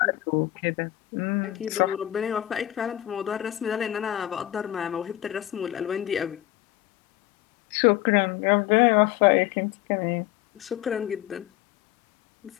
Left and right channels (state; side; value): quieter; right; 14.4 dB